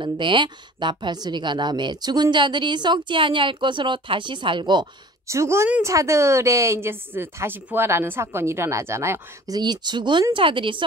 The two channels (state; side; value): normal; both; correlation 0.45